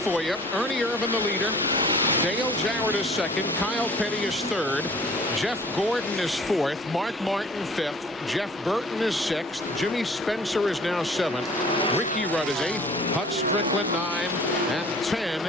you. Ernie Irvan, the leader. Dale Jarrett is second. Kyle Petty is third. Jeff Gordon is fourth. Mark Martin fifth. Jeff Burton is sixth. Jimmy Spencer is now seventh. Ricky Rudd is eighth. Hut Strickland 9. And 10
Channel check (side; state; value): both; normal; correlation 0.50